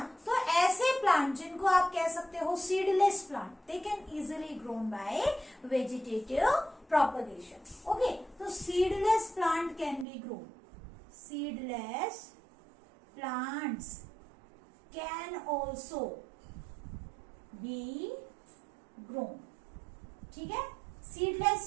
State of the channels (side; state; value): left; drops out; at 10.1 s